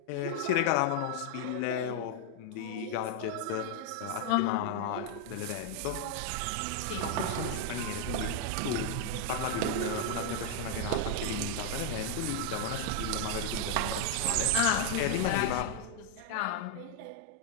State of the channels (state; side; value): different; both; correlation 0.00